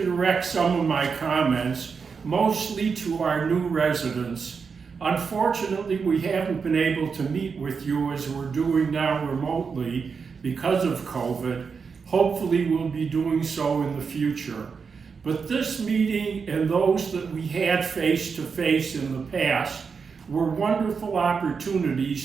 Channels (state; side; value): quieter; left; 5.6 dB